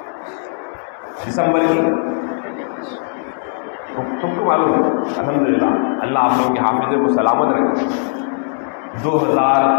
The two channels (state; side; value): silent; right; digital silence